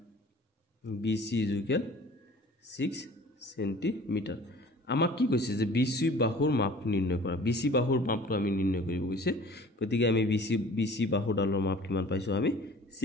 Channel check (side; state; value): both; normal; correlation 0.47